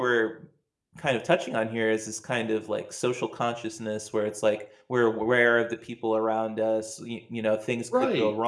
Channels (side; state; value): both; identical; correlation 1.00